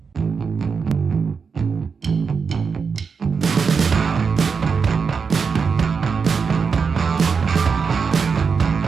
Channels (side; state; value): left; quieter; 5.6 dB